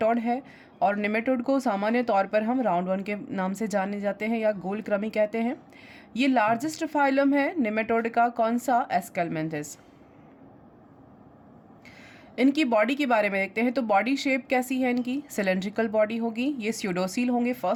है और निमेटोड को सामान्य तौर पर हम राउंड वर्म के नाम से जाने जाते हैं या गोल कृमि कहते हैं। ये लार्जेस्ट फाइलम है निमेटोड का। कौन सा? एस्केलमेंथिस। इनकी बॉडी के बारे में देखते हैं तो बॉडी शेप कैसी है इनकी? सिलेंड्रिकल बॉडी होगी। ये स्यूडोसिल होंगे,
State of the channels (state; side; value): identical; both; correlation 1.00